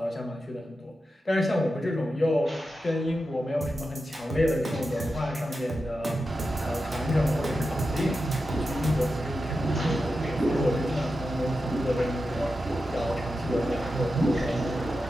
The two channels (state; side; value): normal; both; correlation 0.90